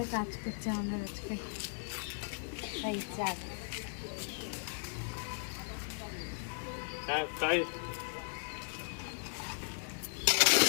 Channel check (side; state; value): right; silent; digital silence